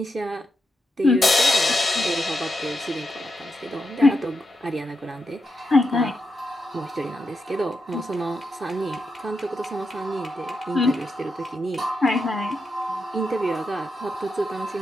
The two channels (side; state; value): both; normal; correlation 0.85